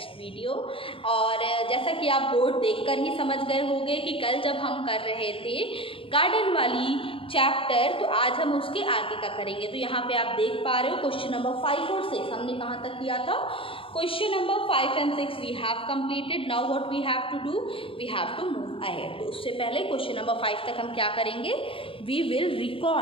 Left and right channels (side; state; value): right; late; 0.26 ms